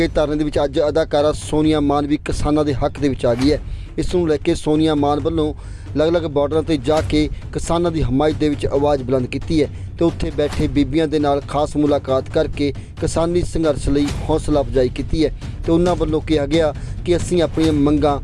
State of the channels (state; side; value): identical; both; correlation 1.00